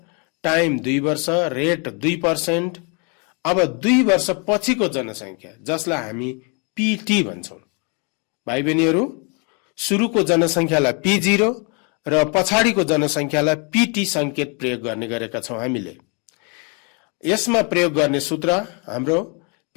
टाइम 2 वर्ष, रेट 2%। अब 2 वर्ष पछिको जनसङ्ख्या जसलाई हामी PT भन्छौं। भाइ बहिनीहरू, सुरुको जनसङ्ख्यालाई P0 र पछाडिको जनसङ्ख्यालाई PT संकेत प्रयोग गर्ने गरेका छौं हामीले। यसमा प्रयोग गर्ने सूत्र हाम्रो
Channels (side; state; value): right; quieter; 33.6 dB